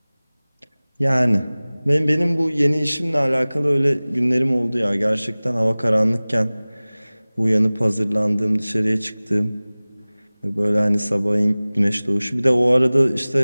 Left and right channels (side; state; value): both; inverted; correlation -0.99